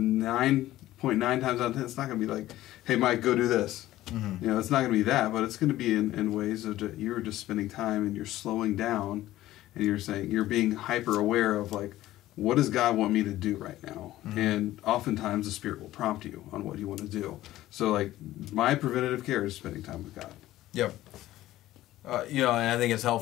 times out of 10, it's not gonna be hey Mike, go do this. It's not gonna be that, but it's gonna be in ways of you're just spending time and you're slowing down, and you're being hyper aware of what does God want me to do right now? And oftentimes the Spirit will prompt you on what you want to do. So my preventative care is spending time with God. Yep. And I think it's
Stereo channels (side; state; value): right; quieter; 15.1 dB